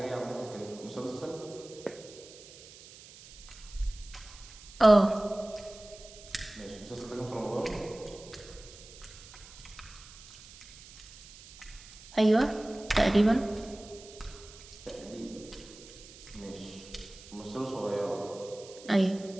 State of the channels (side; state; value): right; noise; hiss, 18 dB below the sound